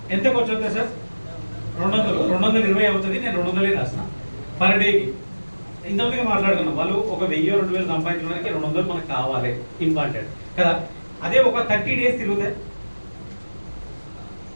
ఎంత ఖర్చు అవుతుంది సార్? 220 అవుతుంది. నేను 200 రాసిన పర్ డేకి. ఇంతమందిగా మాట్లాడుతున్నాం, వాళ్ళు ఒక 1000-2000 సంపాదించడానికి 200 మనకు కావాలి, ఇంపార్టెంట్ కదా. అదే ఒక 30 డేస్ తిరిగితే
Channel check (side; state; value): both; inverted; correlation -1.00